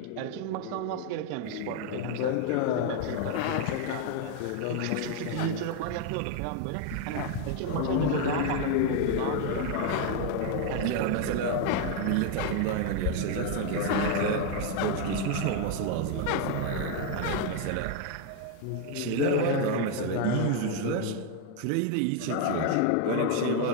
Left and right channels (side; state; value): both; different; correlation 0.01